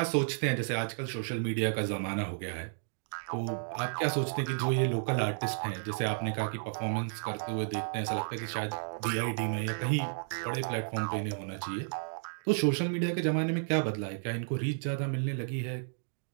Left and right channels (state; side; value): silent; left; digital silence